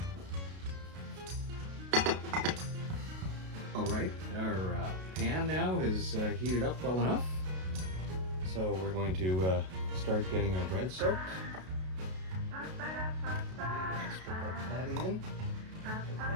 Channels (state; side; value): late; left; 32 ms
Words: All right, our pan now is heated up well enough. So we're going to start getting our bread soaked. Let's put that patty in. Get